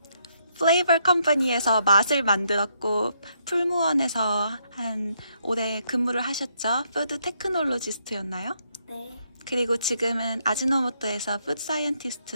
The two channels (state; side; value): inverted; both; correlation -0.75